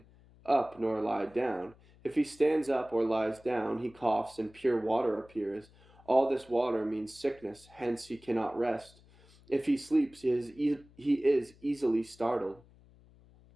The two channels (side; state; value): left; noise; hum, 26 dB below the sound